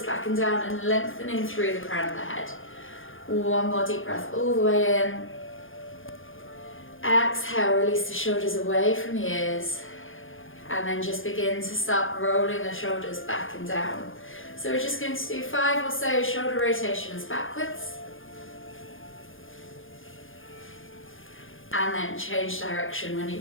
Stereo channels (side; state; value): right; late; 0.58 ms